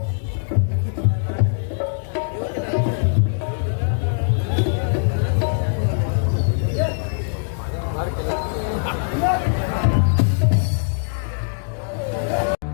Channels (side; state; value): right; silent; digital silence